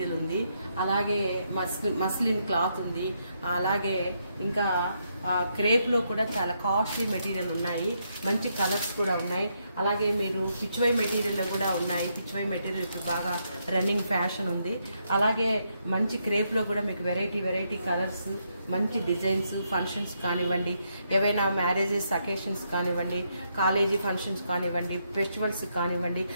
ఉంది. అలాగే మస్లిన్ క్లాత్ ఉంది. అలాగే ఇంకా క్రేప్లో కూడా చాలా కాస్ట్లీ మెటీరియల్ ఉన్నాయి. మంచి కలర్స్ కూడా ఉన్నాయి. అలాగే మీరు పిచ్వై మెటీరియల్లో కూడా ఉన్నాయి. పిచ్వై మెటీరియల్ ఇప్పుడు బాగా రన్నింగ్ ఫ్యాషన్ ఉంది. అలాగే మంచి క్రేప్లో కూడా మీకు వెరైటీ కలర్స్, మంచి డిజైన్స్, ఫంక్షన్స్ కానివ్వండి, ఏవైనా మ్యారేజెస్ అకేషన్స్ కానివ్వండి, కాలేజీ ఫంక్షన్స్ కానివ్వండి, ఫెస్టివల్స్ కానివ్వండి,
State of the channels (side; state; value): both; inverted; correlation -0.78